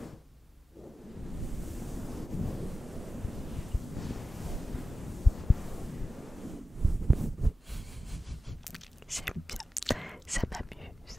J'aime bien, ça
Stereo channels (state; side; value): normal; both; correlation 0.94